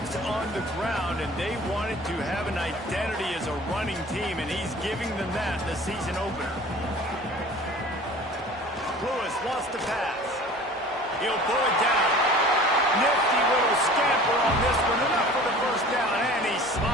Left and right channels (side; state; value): both; normal; correlation 0.44